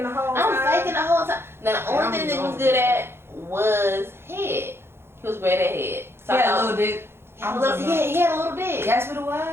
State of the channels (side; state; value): left; late; 0.12 ms